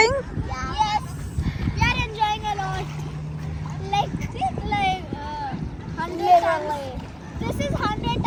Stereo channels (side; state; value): both; identical; correlation 1.00